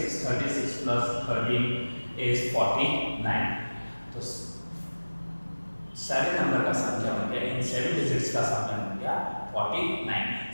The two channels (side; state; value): both; inverted; correlation -1.00